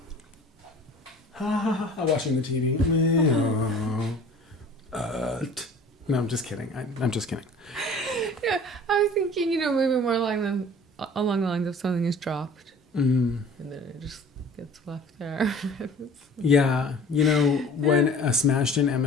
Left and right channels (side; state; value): both; normal; correlation 0.46